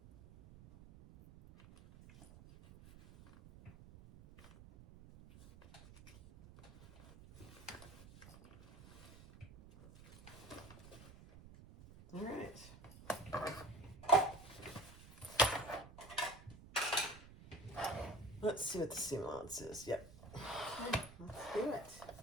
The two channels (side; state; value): right; noise; rumble, 18 dB below the sound